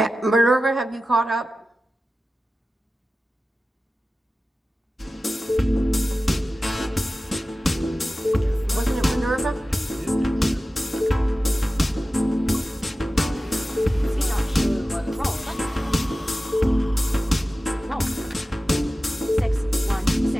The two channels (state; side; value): normal; both; correlation 0.95